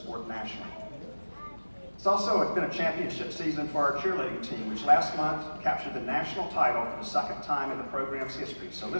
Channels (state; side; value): inverted; both; correlation -1.00